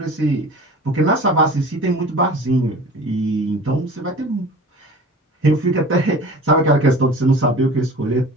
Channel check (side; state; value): both; normal; correlation 0.40